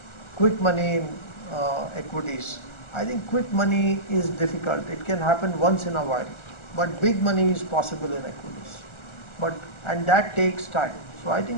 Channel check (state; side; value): late; right; 1.4 ms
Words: quick money in equities. I think quick money is difficult. It can happen once in a while, but big money is possible in equities. And that takes time. So I